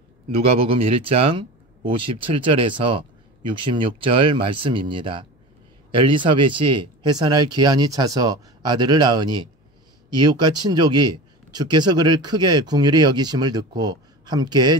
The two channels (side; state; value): both; normal; correlation 0.32